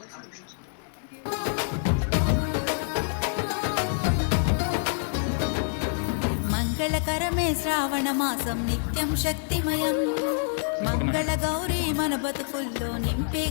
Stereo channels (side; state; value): right; silent; digital silence